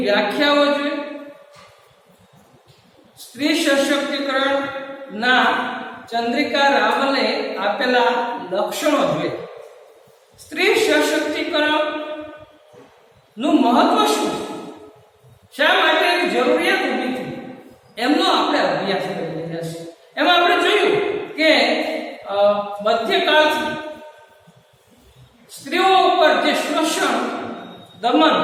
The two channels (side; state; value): both; identical; correlation 1.00